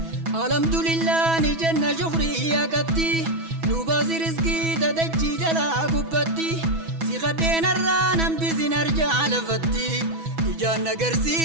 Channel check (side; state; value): left; late; 6.1 ms